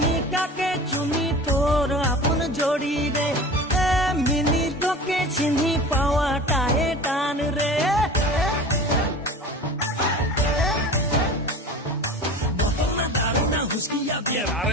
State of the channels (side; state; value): both; normal; correlation 0.36